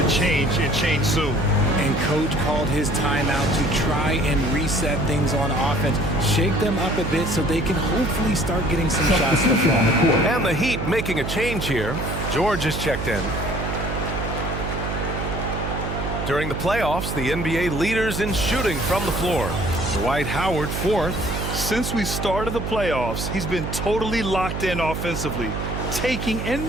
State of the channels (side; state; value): right; noise; hum, 4 dB below the sound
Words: change and change soon. And coach called his timeout to try and reset things on offense. Shake them up a bit so they can hopefully start getting some shots to fall. And the Heat making a change here. George is checked in. During the playoffs, the NBA leaders in shooting from the floor. Dwight Howard 4th. Since we started the playoffs, he's been totally locked in offensively, taking and